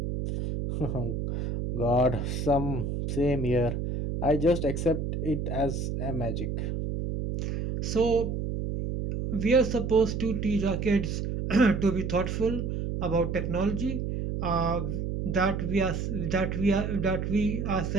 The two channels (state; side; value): noise; right; hum, 2 dB below the sound